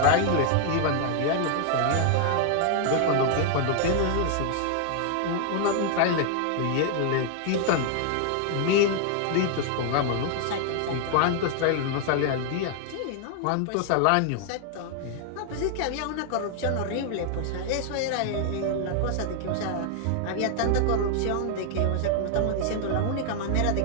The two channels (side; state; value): both; different; correlation 0.00